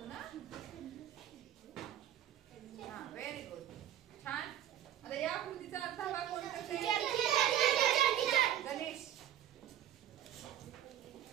हा व्हेरी गुड. छान. आता या आकृतीचा अर्धा भाग कोण करते? गणेश.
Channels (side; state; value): left; quieter; 11.3 dB